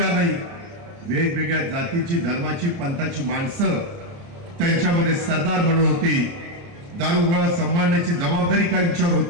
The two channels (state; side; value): late; left; 29 ms